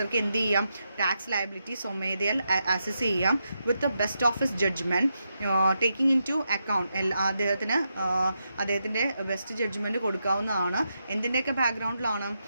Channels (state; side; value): inverted; both; correlation -0.84